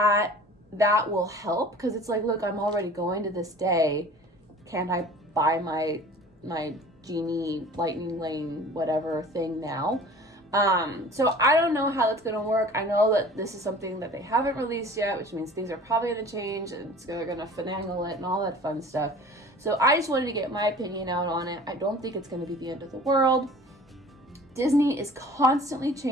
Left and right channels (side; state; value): both; normal; correlation 0.44